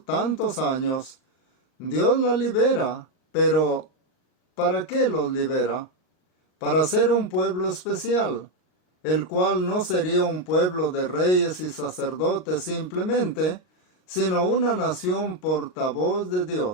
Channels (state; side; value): late; right; 39 ms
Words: tantos años, Dios la libera, pero ¿para qué los libera? Para ser un pueblo especial, el cual no sería un pueblo de reyes y sacerdotes simplemente, sino una nación portavoz de